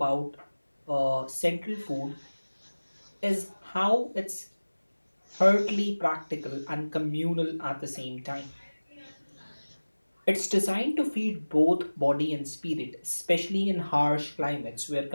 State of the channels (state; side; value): inverted; both; correlation -1.00